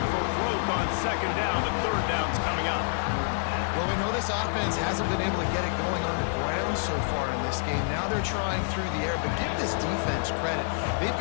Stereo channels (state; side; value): silent; right; digital silence